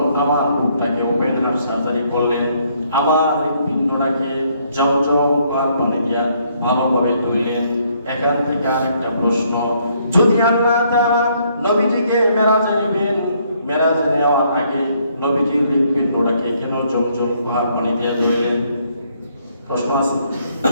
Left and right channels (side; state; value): both; inverted; correlation -0.69